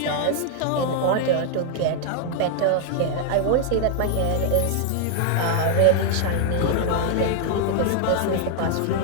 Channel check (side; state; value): both; different; correlation 0.00